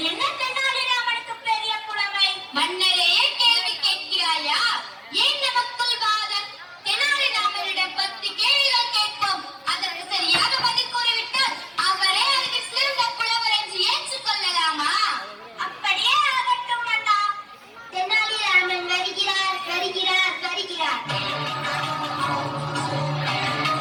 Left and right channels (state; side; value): identical; both; correlation 1.00